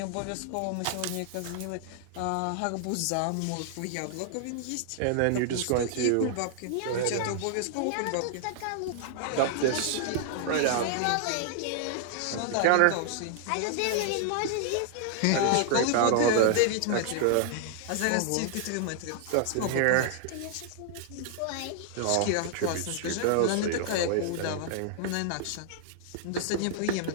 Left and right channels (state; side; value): different; both; correlation -0.01